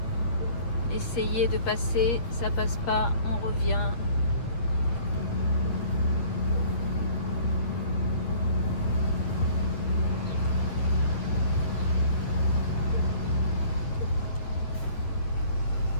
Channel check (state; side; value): late; right; 8.8 ms